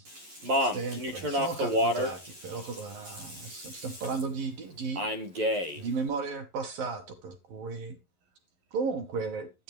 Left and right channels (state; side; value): late; left; 11 ms